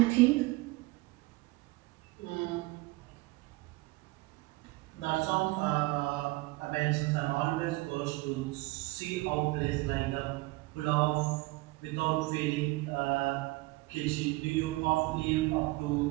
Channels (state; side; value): quieter; left; 21.8 dB